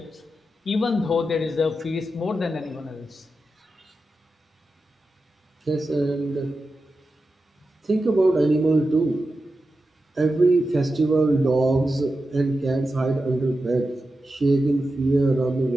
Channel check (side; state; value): both; normal; correlation 0.91